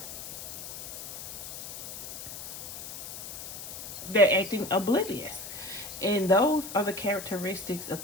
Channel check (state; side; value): noise; left; hiss, 9 dB below the sound